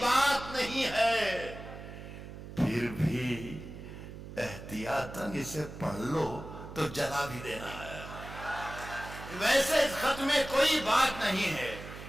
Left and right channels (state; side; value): noise; right; hum, 12 dB below the sound